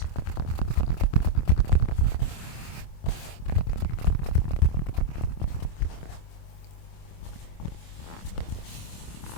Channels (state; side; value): late; right; 26 ms